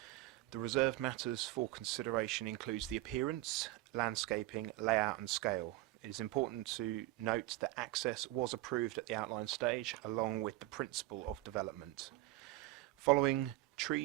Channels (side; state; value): left; quieter; 17.6 dB